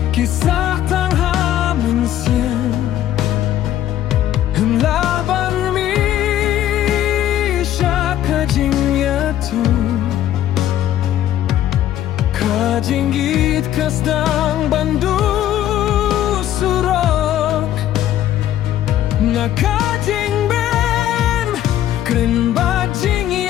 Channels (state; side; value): quieter; right; 12.0 dB